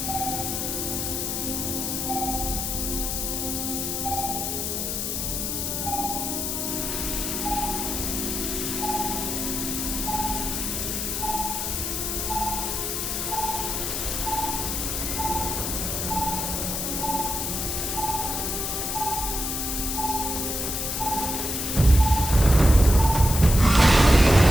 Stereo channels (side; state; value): left; noise; hiss, 2 dB below the sound